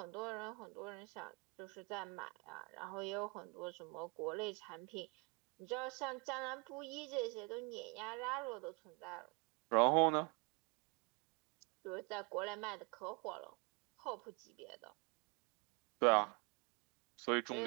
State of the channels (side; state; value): left; quieter; 30.4 dB